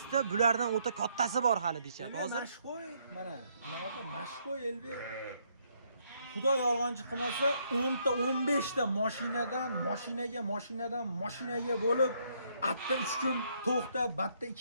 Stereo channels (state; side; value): inverted; both; correlation -0.72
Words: ta bulardan o'ta kattasi bor hali deyishyapti. Hozir mashqo'y mana bunaqa mashqo'y elbek. Xudo yolg'onchi qilmasa 10 ta 15 ta mashinadan mashinaga bo'lib, atta 3 kun to'xtab, batta